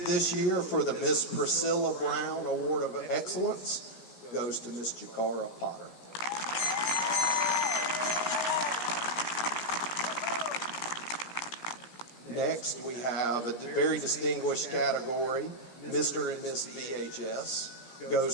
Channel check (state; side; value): late; right; 17 ms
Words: this year for the Miss Priscilla Brown Award of Excellence goes to Miss Jakara Potter. Next, we have a very distinguished category, Mr. and Miss VHS,